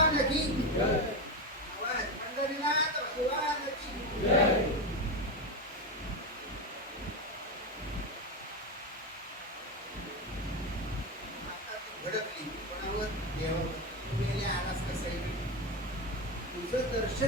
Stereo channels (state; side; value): normal; both; correlation 0.15